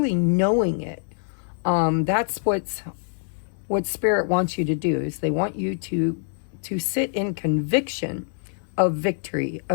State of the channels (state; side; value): silent; right; digital silence